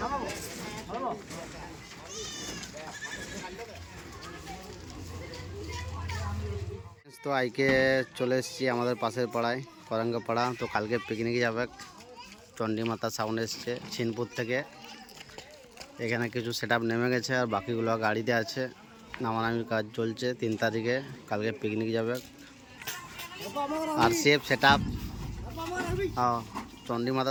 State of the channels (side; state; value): both; identical; correlation 1.00